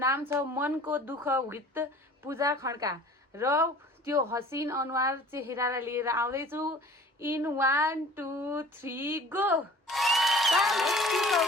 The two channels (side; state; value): both; normal; correlation 0.47